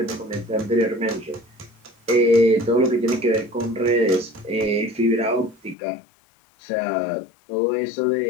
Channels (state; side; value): drops out; right; at 5.8 s